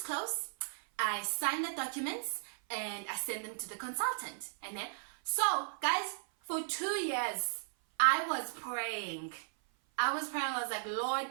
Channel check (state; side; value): silent; left; 54 dB below the other